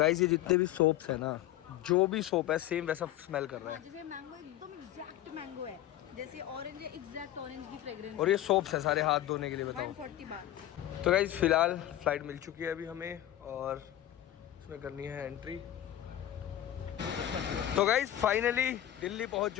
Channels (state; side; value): quieter; right; 12.9 dB